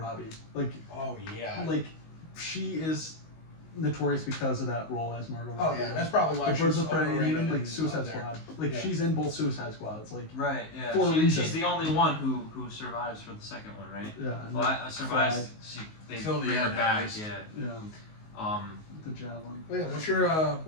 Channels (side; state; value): right; late; 19 ms